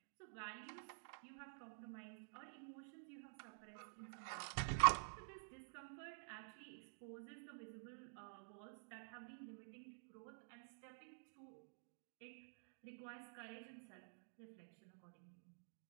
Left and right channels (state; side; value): silent; left; digital silence